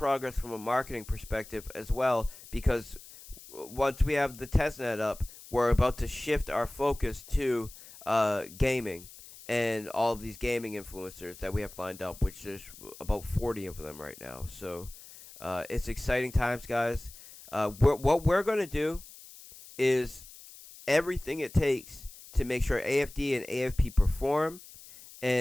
from a marketing perspective as well, because once we have the testnet up, we're about to shift our focus to gaming and all of these gaming influencers that we have lined up, which there's about 40 of them right now. So it's exciting times, guys. What we're going to do is everything it takes to make sure AFD and AFP perform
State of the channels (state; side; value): noise; left; hiss, 18 dB below the sound